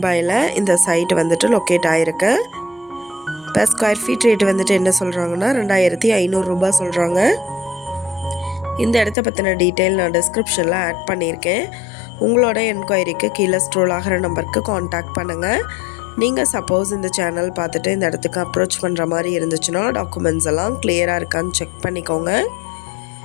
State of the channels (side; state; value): right; drops out; at 9.2 s